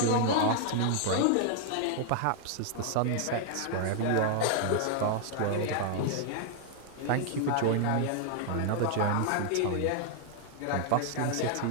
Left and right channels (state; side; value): different; both; correlation 0.00